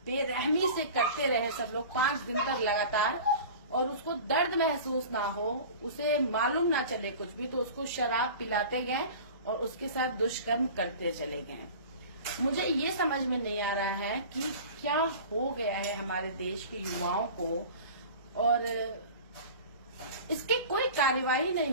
बेरहमी से करते रहे सब लोग 5 दिन तक लगातार। और उसको दर्द महसूस ना हो, उसे मालूम ना चले कुछ भी, तो उसको शराब पिलाते गए और उसके साथ दुष्कर्म करते चले गए। मुझे ये समझ में नहीं आ रहा है कि क्या हो गया है हमारे देश के युवाओं को, और इसकी कोई कार्यवाही नहीं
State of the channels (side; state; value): both; inverted; correlation -0.38